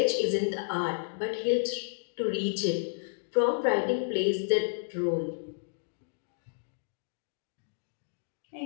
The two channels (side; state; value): right; silent; digital silence